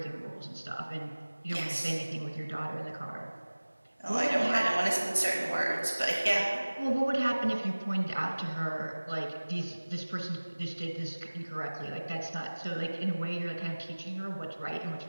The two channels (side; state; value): both; inverted; correlation -1.00